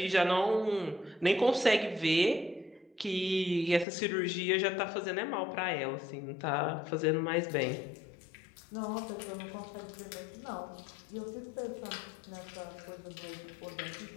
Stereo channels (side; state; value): right; drops out; at 3.9 s